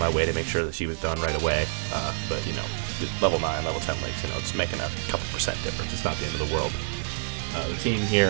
way to make sure that she was done right away, but, you know, level 9, level 10 links, you know, it's making a couple percent difference. It's not the end of the world. The team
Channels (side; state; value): left; silent; digital silence